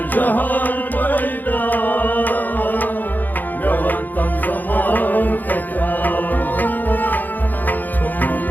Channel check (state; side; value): late; right; 0.085 ms